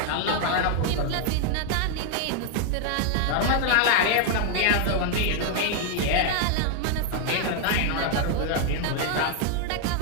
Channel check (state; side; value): different; both; correlation 0.00